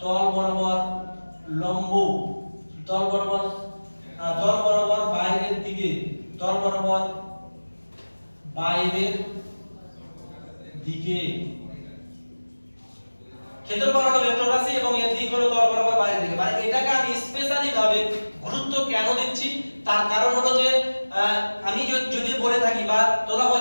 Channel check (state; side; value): inverted; both; correlation -1.00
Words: লম্ব, তল বরাবর বাইরের দিকে, ক্ষেত্রফল হলো ভেক্টর রাশি এবং এর দিক হলো তল বরাবর বাইরের দিকে। মানে এটাকে আমি স্পেশালি ভাবে গুরুত্ব কেন দিচ্ছি, তার কারণ হলো যে আমি যদি বলে থাকি বা তোরা